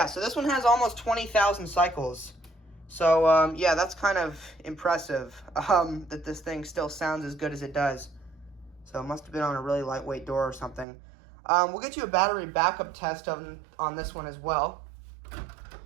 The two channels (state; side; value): drops out; left; at 10.9 s